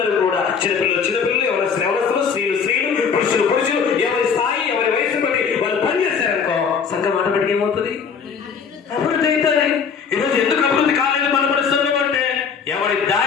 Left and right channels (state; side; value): quieter; right; 6.3 dB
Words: కూడా, చిన్నపిల్లలు ఎవరస్తులు, స్త్రీలు, పురుషులు, ఎవరి స్థాయి, ఎవరి వయసు బట్టి వాళ్ళు పని చేశారనుకో సంఘం ఆటోమేటిక్ ఏమవుతుంది? అభివృద్ధి అవుతుంది. ఈరోజు ఎందుకు అభివృద్ధి కాలేదు మన పరిస్థితులు అంటే ఎవరి